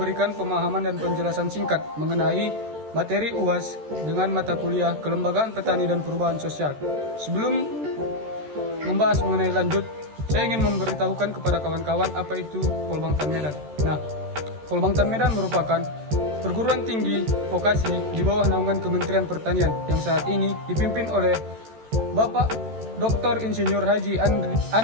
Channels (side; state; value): left; late; 13 ms